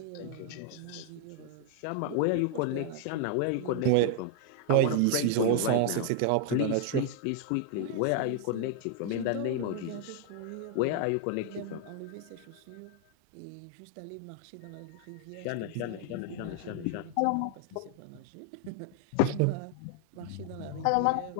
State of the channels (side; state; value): both; different; correlation 0.00